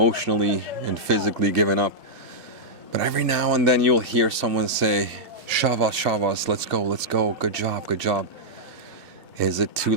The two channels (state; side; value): late; left; 2.4 ms